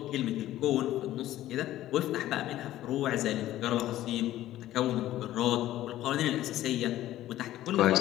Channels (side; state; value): right; quieter; 14.1 dB